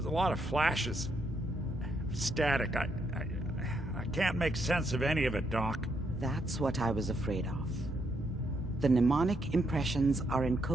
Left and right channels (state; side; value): normal; both; correlation 0.77